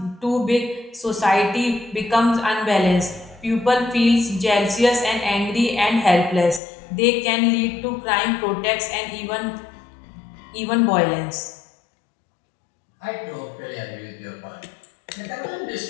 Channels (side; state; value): right; drops out; at 6.6 s